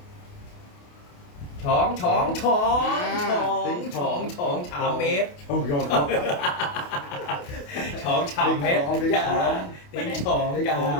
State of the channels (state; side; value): late; right; 28 ms